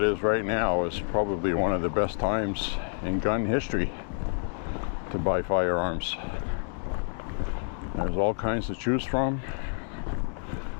right now is probably one of the best times in gun history to buy firearms. There's all kinds to choose from.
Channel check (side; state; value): right; silent; 59 dB below the other